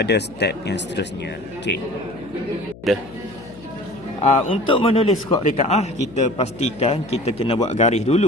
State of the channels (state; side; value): noise; left; hum, 19 dB below the sound